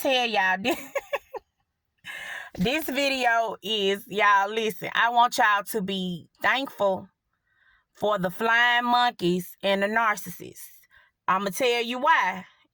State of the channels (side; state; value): both; identical; correlation 1.00